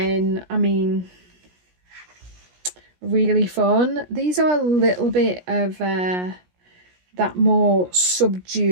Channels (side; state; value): left; late; 17 ms